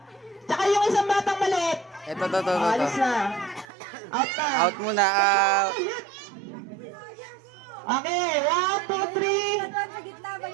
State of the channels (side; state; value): left; drops out; at 3.7 s